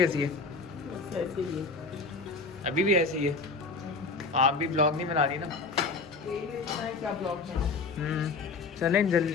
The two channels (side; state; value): right; quieter; 4.1 dB